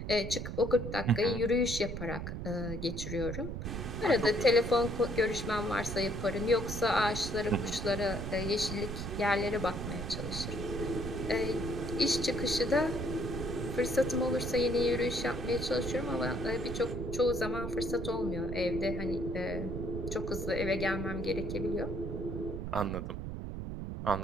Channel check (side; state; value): right; noise; rumble, 5 dB below the sound